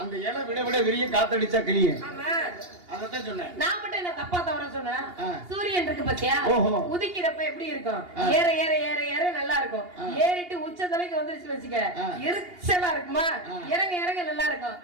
அந்த இலை விட விட விரிய காத்தடிச்சா கிளியும். ஆமா அதத்தான் சொன்னேன். நான் மட்டும் என்ன தப்பா தவறா சொன்னேன்? சூரியன் இருக்கு பாத்தியா, உதிக்கிறப்ப எப்படி இருக்கும்? ஏற ஏற ஏற ஏற நல்லா இருக்கும். ஏறிட்டு உச்சந்தலைக்கு வந்துருச்சு வச்சுக்க எரிச்சலா இருக்குமா? இறங்க இறங்க நல்லா இருக்கும்.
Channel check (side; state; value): left; late; 2.8 ms